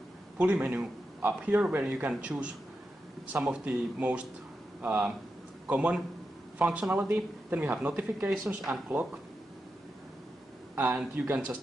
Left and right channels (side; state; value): both; normal; correlation 0.88